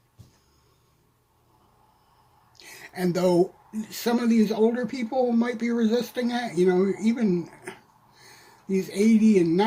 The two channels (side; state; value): both; identical; correlation 1.00